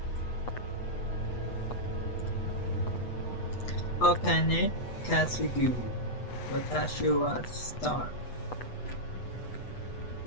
Okane Kasugu. Watashi wa star.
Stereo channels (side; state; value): right; late; 8.2 ms